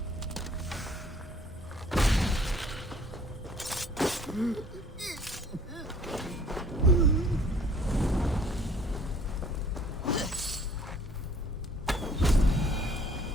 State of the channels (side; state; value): both; normal; correlation 0.56